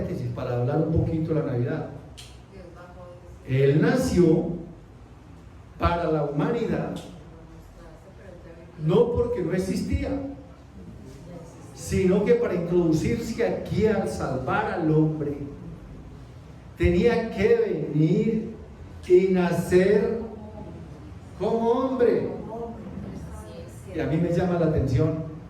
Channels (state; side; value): identical; both; correlation 1.00